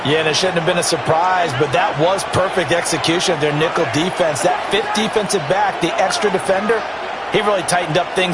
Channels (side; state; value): both; identical; correlation 1.00